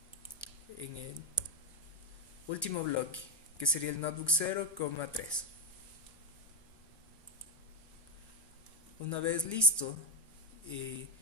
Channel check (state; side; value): normal; both; correlation 0.08